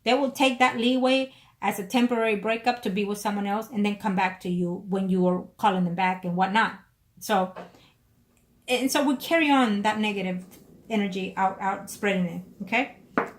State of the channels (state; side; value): identical; both; correlation 1.00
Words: They will take that leeway as a temporary breakup to be with someone else and then come back to you when you are calling them back and whatnot. So we carry on that negative energy out spreading it. Okay?